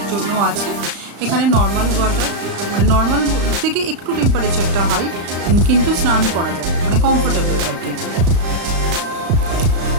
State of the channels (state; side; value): late; left; 35 ms